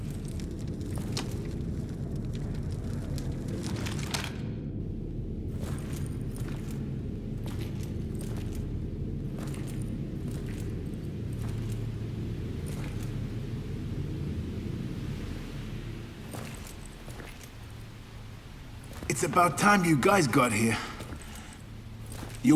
It's about time you guys got here. You're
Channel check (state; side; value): identical; both; correlation 1.00